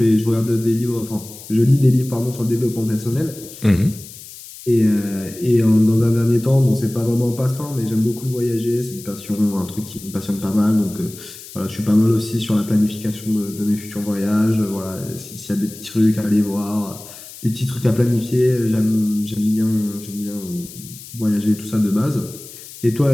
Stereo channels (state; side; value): noise; left; hiss, 16 dB below the sound